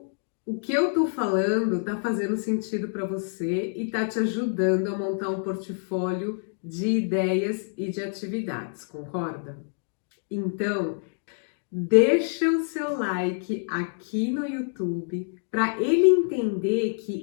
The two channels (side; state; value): right; silent; digital silence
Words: o que eu tô falando tá fazendo sentido para você e tá te ajudando a montar um portfólio de ideias e de atividades, concorda? Então, deixa o seu like aqui no YouTube para ele entender